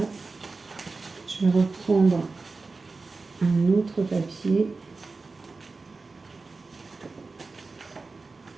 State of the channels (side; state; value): left; quieter; 3.9 dB